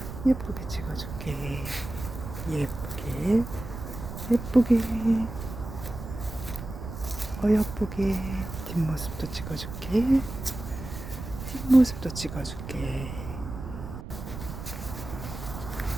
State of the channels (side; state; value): right; noise; rumble, 9 dB below the sound